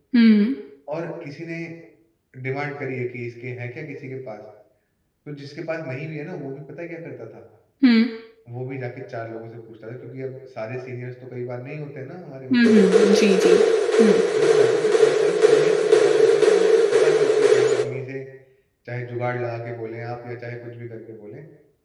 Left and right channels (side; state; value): both; identical; correlation 1.00